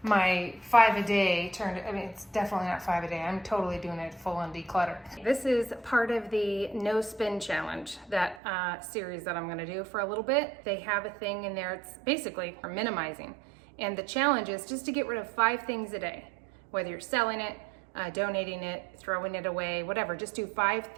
my 5 a day turned, I mean, it's definitely not 5 a day. I'm totally doing it full on declutter. This is part of the no spin challenge, that series that I'm gonna do for a little bit. They have a thing in there, it's basically for minimizing. And the challenge is just to get rid of 5 things a day, whether you're selling it, donating it, throwing it away, whatever, just do 5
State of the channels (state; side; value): drops out; left; at 8.4 s